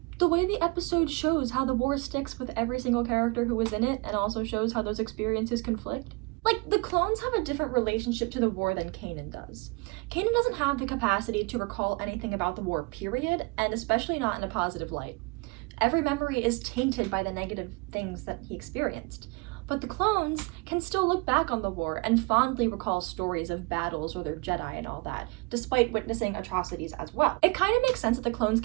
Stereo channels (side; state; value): left; quieter; 27.7 dB